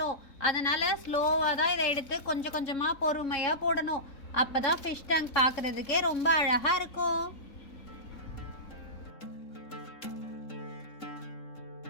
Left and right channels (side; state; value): right; late; 3.7 ms